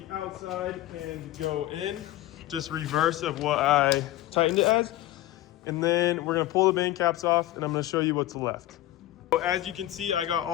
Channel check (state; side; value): quieter; right; 15.3 dB